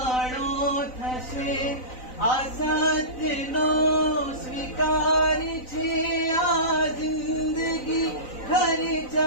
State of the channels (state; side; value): late; right; 3.9 ms